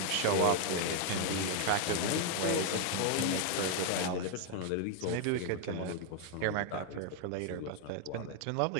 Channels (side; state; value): both; different; correlation 0.00